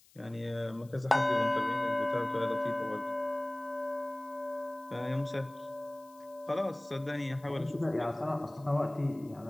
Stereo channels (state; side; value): noise; left; hiss, 28 dB below the sound